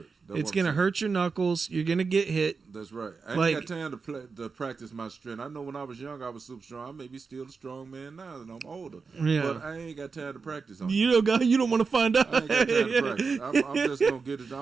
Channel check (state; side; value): quieter; left; 4.9 dB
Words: It's gonna hurt your knuckles. You're gonna get hit. That's right. I ain't got time to practice my strength. I know when I was young, I was super strong. I may be still a strong man now that I'm older. Yeah. But I ain't got time to practice on it. You don't want to find out. I ain't got time to practice. I'm just gonna get it.